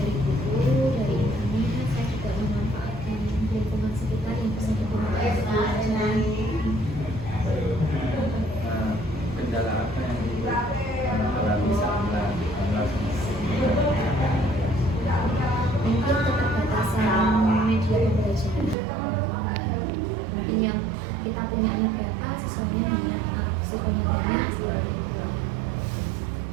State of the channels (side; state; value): left; drops out; at 18.8 s